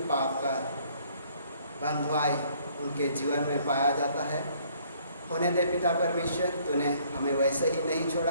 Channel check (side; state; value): both; inverted; correlation -0.62